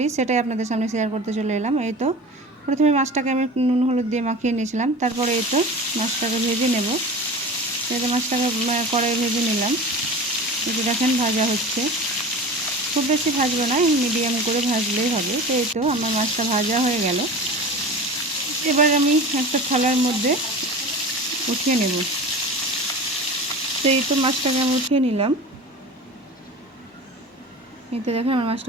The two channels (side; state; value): both; normal; correlation 0.34